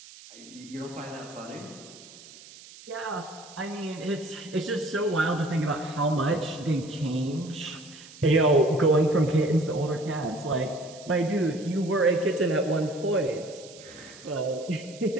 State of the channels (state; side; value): noise; right; hiss, 19 dB below the sound